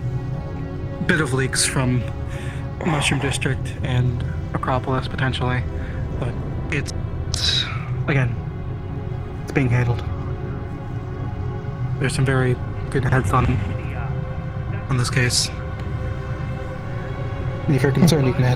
a bit of leaks from Mushroom District and Acropolis potentially, but it's again, it's being handled. There's some very good heads on this case. If you're concerned, you can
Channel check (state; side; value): identical; both; correlation 1.00